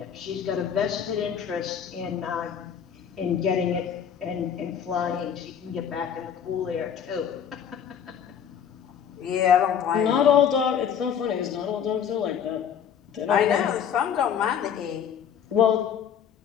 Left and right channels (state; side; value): quieter; right; 8.3 dB